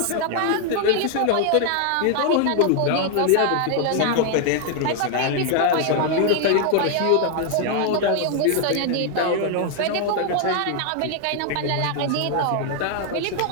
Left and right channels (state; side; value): different; both; correlation 0.00